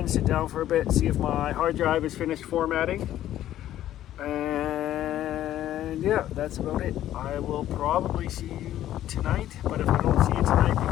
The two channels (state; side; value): quieter; right; 12.6 dB